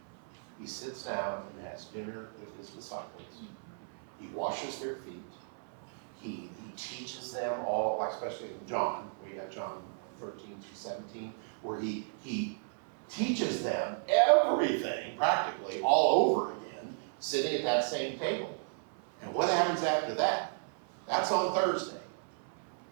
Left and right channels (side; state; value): left; silent; 55 dB below the other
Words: He sits down and has dinner with his disciples. He washes their feet. He teaches them all, like especially in John, we got John 13 through 17, where he teaches them everything practically all over again, sitting at that same table. And what happens after that? That's on Thursday.